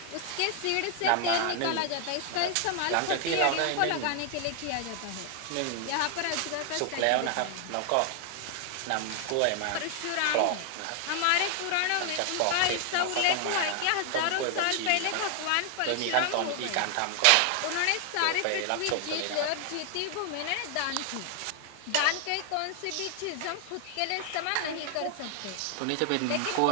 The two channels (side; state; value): both; different; correlation 0.00